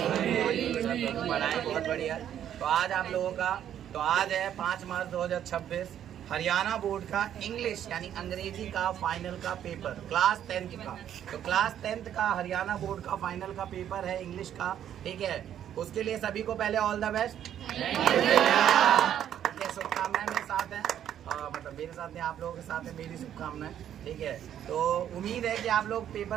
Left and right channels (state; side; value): quieter; left; 10.3 dB